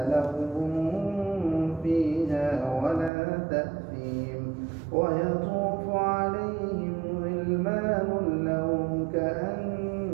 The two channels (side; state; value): left; drops out; at 3.1 s